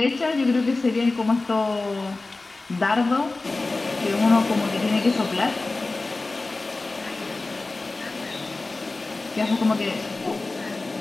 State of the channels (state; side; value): quieter; right; 3.3 dB